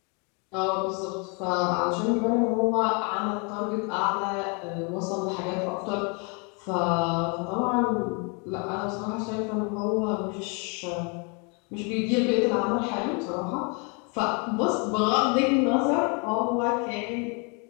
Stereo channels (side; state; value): right; quieter; 33.9 dB